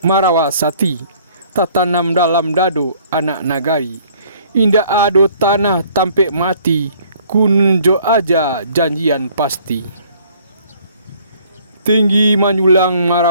marawasati, tatanam dalam dado anak nagari. Indak ado tanah tampek mati, kunjo aja janjian pasti. Tinggi manyulang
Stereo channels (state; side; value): inverted; both; correlation -0.58